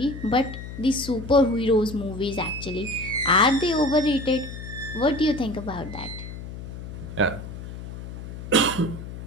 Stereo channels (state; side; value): noise; left; hum, 10 dB below the sound